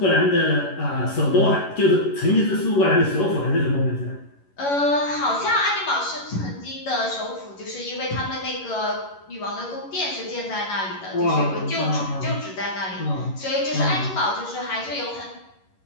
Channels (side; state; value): right; late; 11 ms